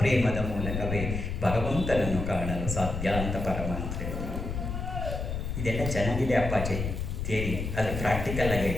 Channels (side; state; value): left; noise; rumble, 4 dB below the sound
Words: ಪ್ರೇಮದ ಮೂಲಕವೇ ಭಗವಂತನನ್ನು ಕಾಣಲು ಸಾಧ್ಯ ಅಂತ ಪರಮಾತ್ಮ ಹೇಳಿದರು. ಇದೆಲ್ಲ ಚೆನ್ನಾಗಿದೆ ಅಪ್ಪಾಜಿ ಥಿಯರಿ, ಅದು ಪ್ರಾಕ್ಟಿಕಲ್ ಆಗಿ